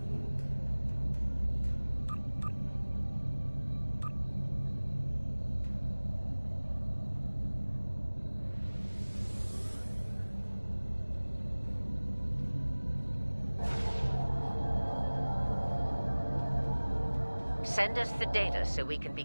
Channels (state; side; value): inverted; both; correlation -1.00